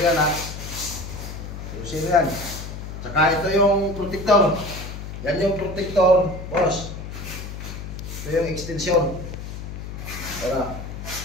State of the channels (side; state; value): left; noise; hum, 9 dB below the sound